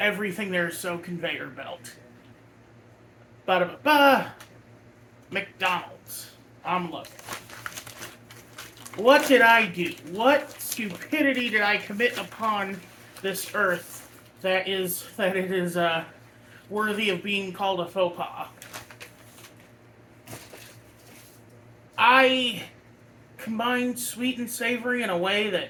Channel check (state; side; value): identical; both; correlation 1.00